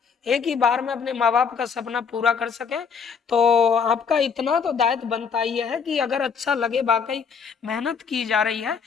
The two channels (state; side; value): quieter; right; 6.1 dB